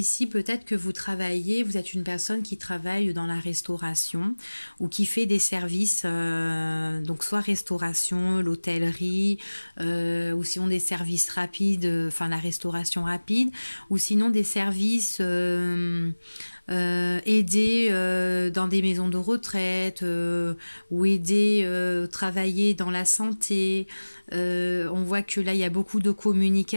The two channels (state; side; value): inverted; both; correlation -1.00